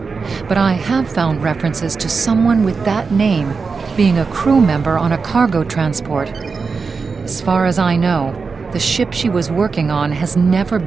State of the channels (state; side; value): quieter; left; 4.8 dB